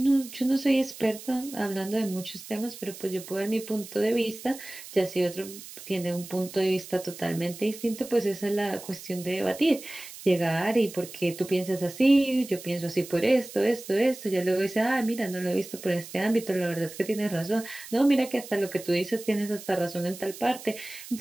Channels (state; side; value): noise; right; hiss, 14 dB below the sound